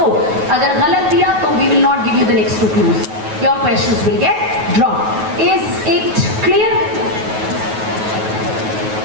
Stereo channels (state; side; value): late; left; 9.3 ms